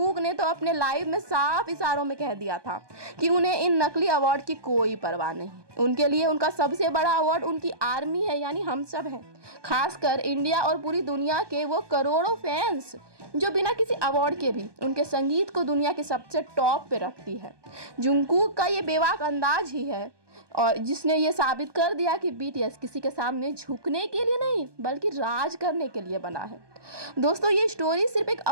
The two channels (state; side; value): late; left; 1.2 ms